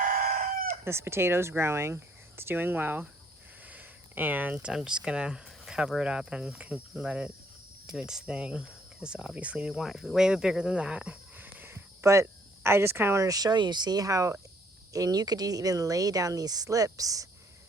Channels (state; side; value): normal; both; correlation 0.65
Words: this potato's growing. It's doing well, and I'm just gonna cover it up and let it do its thing, because obviously we want it to be way bigger than that. But I just kind of wanted to show you, see how, and you could even lay down these slips,